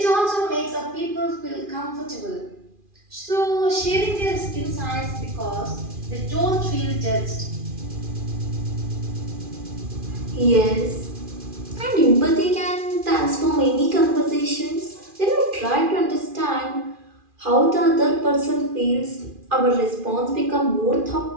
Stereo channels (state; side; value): late; left; 2.4 ms